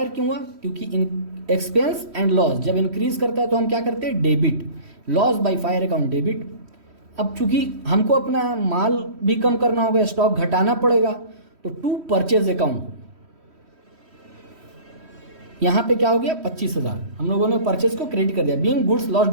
क्यों हुआ? क्योंकि एक्सपेंस एंड लॉस जब इंक्रीज करता है तो हम क्या करते हैं, debit. Loss by fire account debit. अब चूंकि हमको अपना माल भी कम करना होगा, स्टॉक घटाना पड़ेगा, तो टू परचेज अकाउंट यहां पे क्या हो गया, 25,000 हम लोगों ने परचेज को क्रेडिट कर दिया। Being goods loss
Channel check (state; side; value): late; left; 3.1 ms